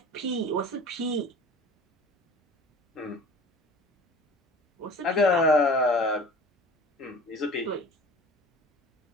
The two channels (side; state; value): both; normal; correlation 0.42